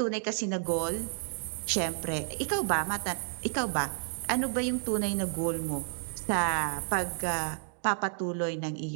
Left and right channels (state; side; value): silent; left; digital silence